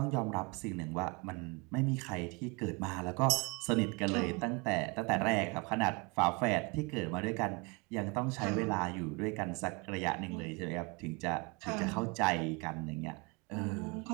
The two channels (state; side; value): quieter; left; 29.7 dB